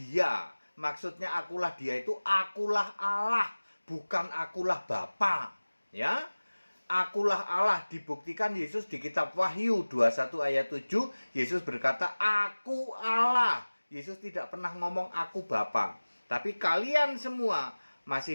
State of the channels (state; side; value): inverted; both; correlation -1.00